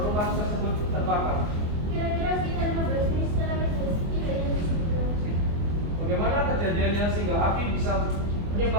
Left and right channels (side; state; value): left; late; 24 ms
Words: rumah tersebut terbakar? Kira-kira sekitar 15 menit setelah kejadian tersebut. Bagaimana kejadiannya sehingga api bisa